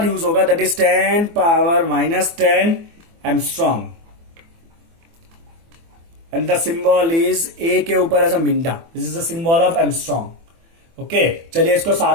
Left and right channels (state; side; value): late; left; 24 ms